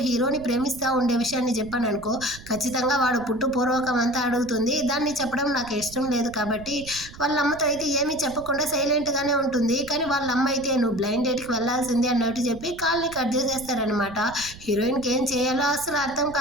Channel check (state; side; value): noise; right; rumble, 17 dB below the sound